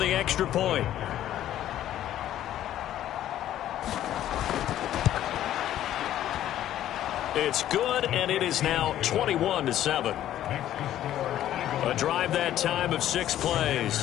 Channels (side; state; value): right; quieter; 12.3 dB